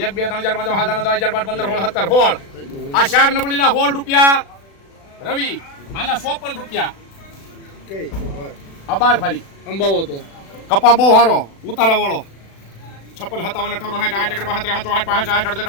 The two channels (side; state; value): right; late; 36 ms